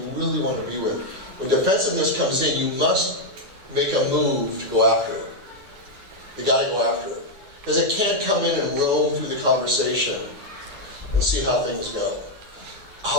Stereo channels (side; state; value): left; late; 9.6 ms